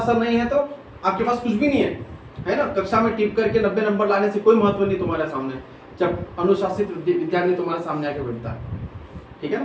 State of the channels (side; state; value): both; identical; correlation 1.00